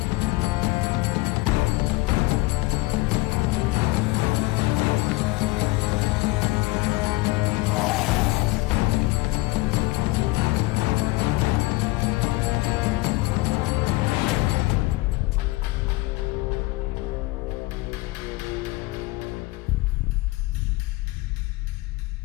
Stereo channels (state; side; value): quieter; right; 21.7 dB